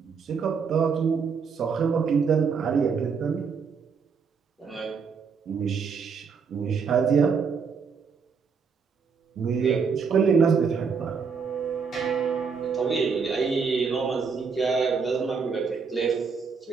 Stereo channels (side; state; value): left; quieter; 5.7 dB